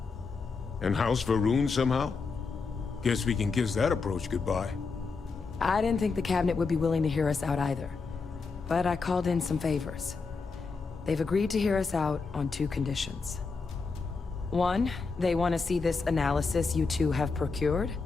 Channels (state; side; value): quieter; right; 4.6 dB